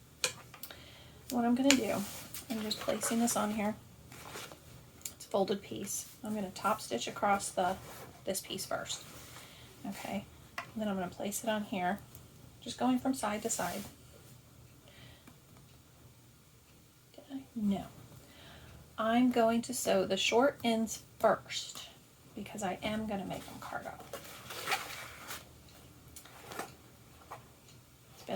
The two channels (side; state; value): both; identical; correlation 1.00